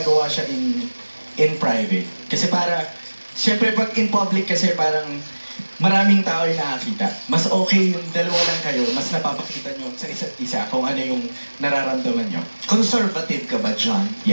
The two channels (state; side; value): inverted; both; correlation -1.00